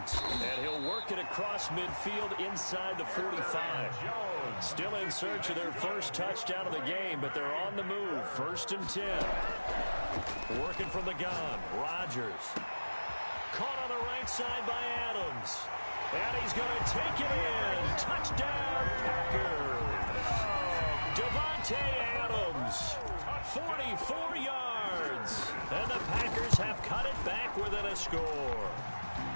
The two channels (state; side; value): inverted; both; correlation -1.00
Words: And he'll work it across midfield inside the 45. Jones still in search of their first touchdown of the game, but they're on the move. 1st and 10. Working from the gun. Rodgers. Caught on the right side by Adams. And he's going to take it in. Touchdown, Packers. Devontae Adams. 44 yards. And the Packers have cut it back within a score.